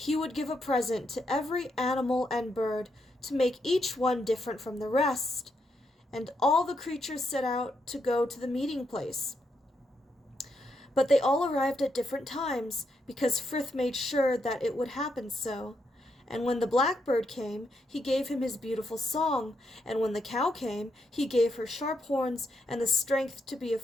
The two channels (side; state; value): both; normal; correlation 0.80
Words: would give a present to every animal and bird, to make each one different from the rest. And all the creatures set out to go to the meeting place. But they all arrived at different times, because Frith made sure that it would happen so. And when the blackbird came, he gave him his beautiful song, and when the cow came, he gave her sharp horns and the strength to be